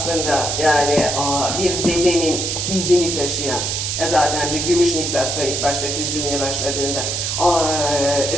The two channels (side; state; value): right; noise; hiss, 1 dB below the sound